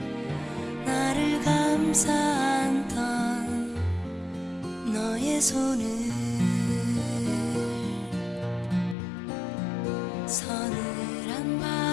감싸 안던 너의 손을 서늘한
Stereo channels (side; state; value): right; drops out; at 9.0 s